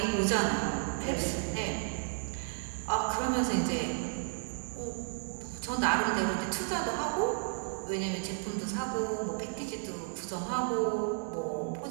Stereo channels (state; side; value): silent; left; 56 dB below the other